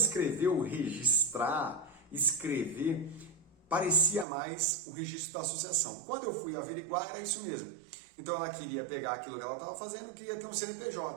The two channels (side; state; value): left; drops out; at 4.2 s